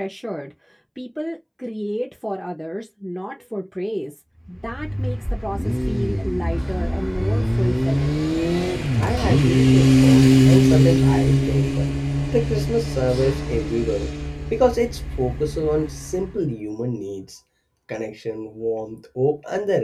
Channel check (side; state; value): both; identical; correlation 1.00